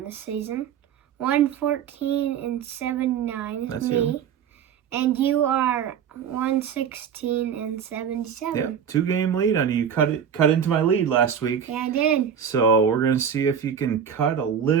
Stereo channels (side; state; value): left; quieter; 7.9 dB